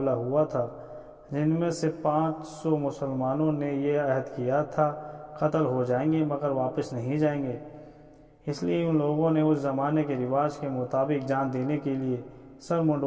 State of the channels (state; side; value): identical; both; correlation 1.00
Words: ہوا تھا، جن میں سے 500 مسلمانوں نے یہ عہد کیا تھا قتل ہو جائیں گے مگر واپس نہیں جائیں گے۔ اس لیے ان لوگوں نے اس زمانے کے رواج کے مطابق جان دینے کے لیے سر